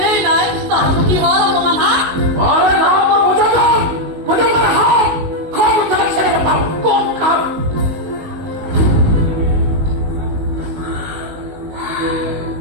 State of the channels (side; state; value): left; late; 19 ms